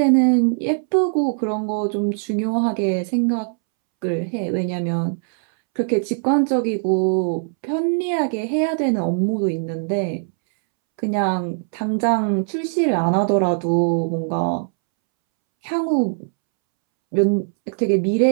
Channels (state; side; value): silent; left; 65 dB below the other